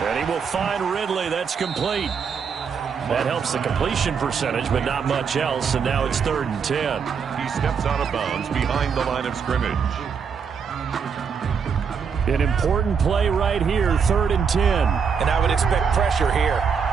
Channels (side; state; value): left; quieter; 6.4 dB